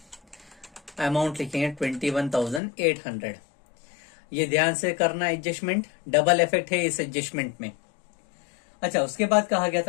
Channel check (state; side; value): drops out; right; at 2.6 s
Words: अमाउंट लिखेंगे 21,800। ये ध्यान से करना एडजस्टमेंट, डबल इफेक्ट है इस एडजस्टमेंट में। अच्छा, उसके बाद कहा गया